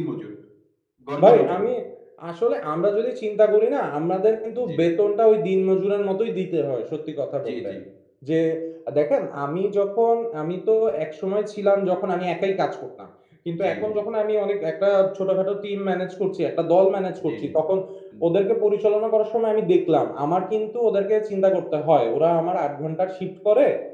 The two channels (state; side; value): identical; both; correlation 1.00